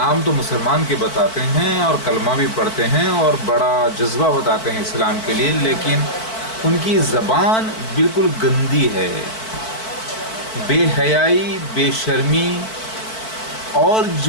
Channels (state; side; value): late; right; 4.5 ms